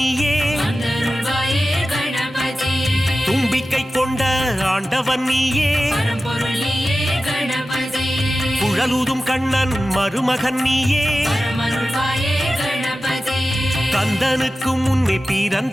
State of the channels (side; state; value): both; normal; correlation 0.94